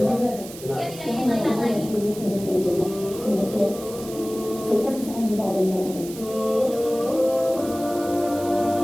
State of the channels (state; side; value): noise; right; hiss, 15 dB below the sound